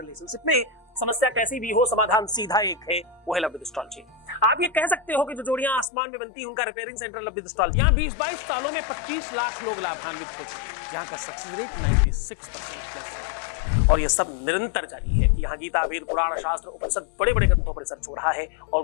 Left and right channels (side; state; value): right; drops out; at 5.9 s